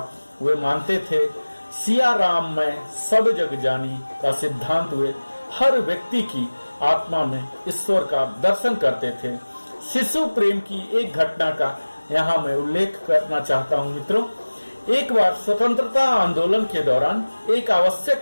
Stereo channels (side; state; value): both; inverted; correlation -1.00